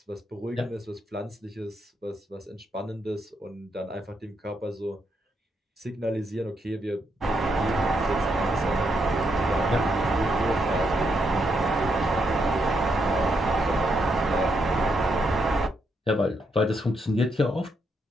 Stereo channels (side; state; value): both; normal; correlation 0.79